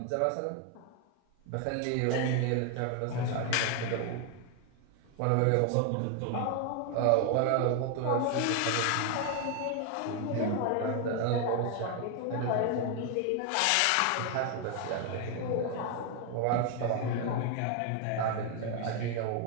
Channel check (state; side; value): different; both; correlation 0.01